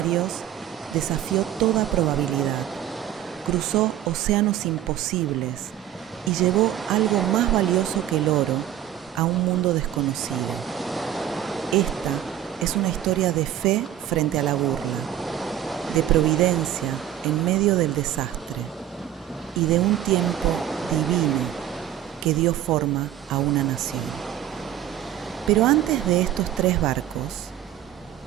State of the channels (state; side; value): quieter; left; 11.5 dB